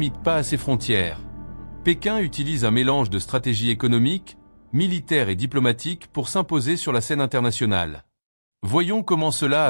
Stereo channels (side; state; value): both; inverted; correlation -1.00